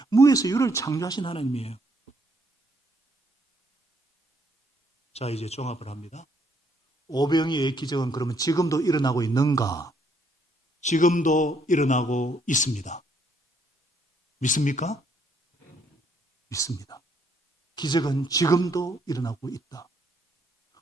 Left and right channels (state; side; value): normal; both; correlation 0.70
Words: 무에서 유를 창조하신 하나님이에요. 자, 이제 종합을 합니다. 오병이어의 기적은 그러면 지금도 일어나고 있는가? 지금도 일어나고 있습니다. 믿습니까? 믿습니다. 기적은 지금도 일어나고 있다.